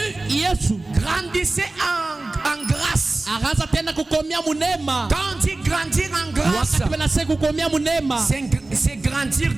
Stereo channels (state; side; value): quieter; left; 3.1 dB